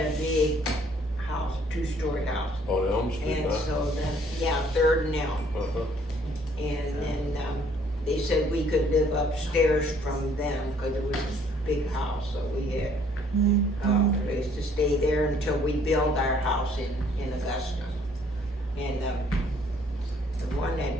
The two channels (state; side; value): normal; both; correlation 0.62